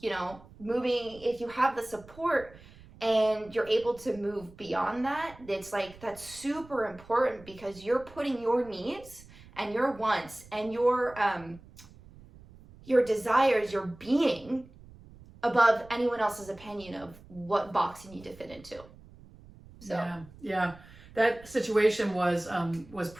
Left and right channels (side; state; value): right; noise; rumble, 21 dB below the sound